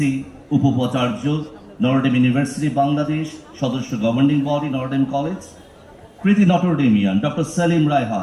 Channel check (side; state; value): both; identical; correlation 1.00